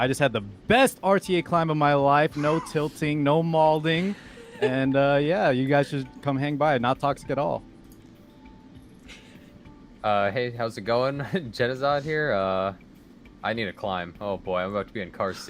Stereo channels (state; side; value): identical; both; correlation 1.00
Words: just had the best RTA climb of my life. No tilting, no mauling. And yeah, you guys should come hang by. Not toxic at all. Hey, how's it going? Jenazad here. I need to climb. Oh boy, I'm about to be in car